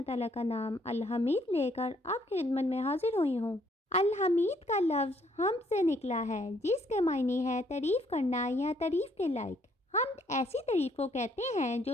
تعالیٰ کا نام الحمید لے کر آپ کی خدمت میں حاضر ہوئی ہوں۔ الحمید کا لفظ حمد سے نکلا ہے، جس کے معنی ہے تعریف کرنا یا تعریف کے لائق۔ حمد ایسی تعریف کو کہتے ہیں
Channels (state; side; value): normal; both; correlation 0.67